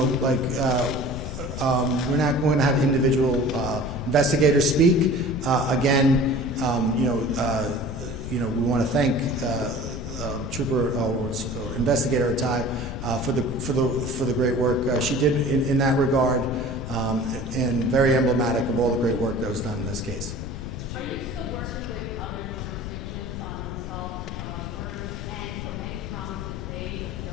not going to have individual investigators speak. Again, we want to thank Trooper or Investigator Atai for the great work she did in that regard, and very emblematic of all the great work that was done in this case. Are you still working with other jurisdictions on unsolved murders, and any promises made of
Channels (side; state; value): left; noise; rumble, 7 dB below the sound